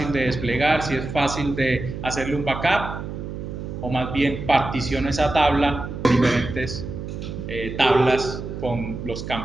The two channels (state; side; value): noise; right; hum, 7 dB below the sound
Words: de desplegar, si es fácil de hacerle un backup, o más bien particiono esa tabla en diferentes tablas con los